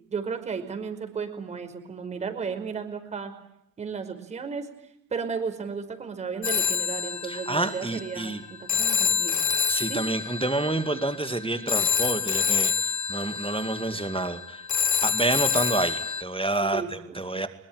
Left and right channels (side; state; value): both; normal; correlation 0.35